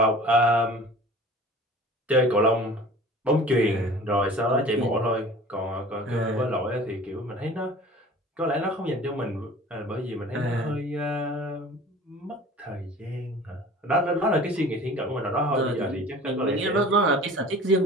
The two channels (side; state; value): both; normal; correlation 0.44